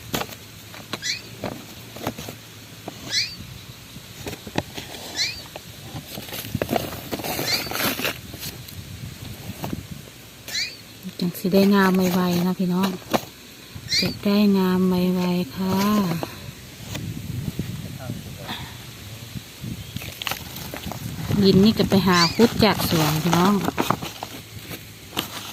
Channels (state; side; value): identical; both; correlation 1.00